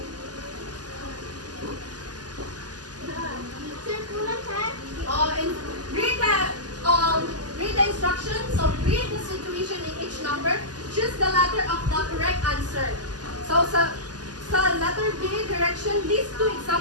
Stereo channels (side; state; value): left; late; 0.69 ms